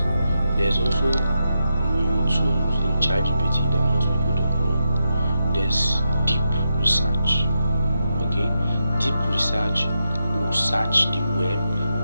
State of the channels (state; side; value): inverted; both; correlation -0.86